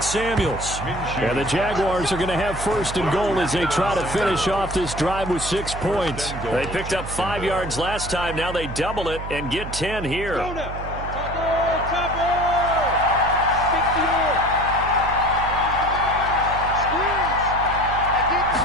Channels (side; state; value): right; noise; hum, 9 dB below the sound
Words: Samuels. And the Jaguars are going to have 1st and goal as they try to finish off this drive with 6 points. They picked up 5 yards last time. Now they double it and get 10 here.